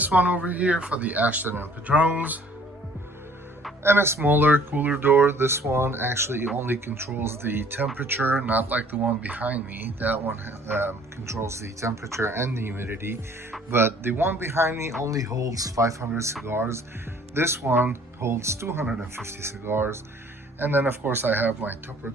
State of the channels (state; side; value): normal; both; correlation 0.56